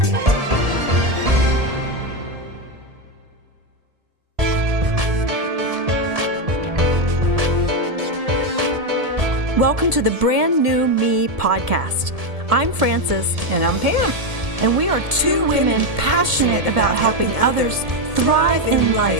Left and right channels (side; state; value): left; late; 1.7 ms